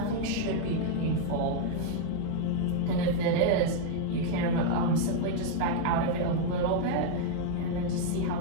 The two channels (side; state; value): both; different; correlation 0.00